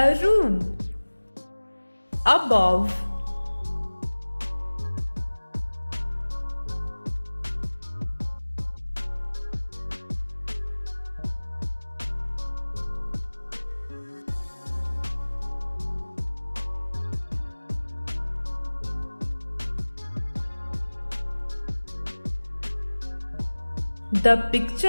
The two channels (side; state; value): both; inverted; correlation -1.00